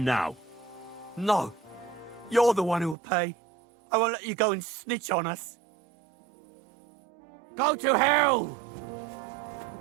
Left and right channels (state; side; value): drops out; left; at 3.0 s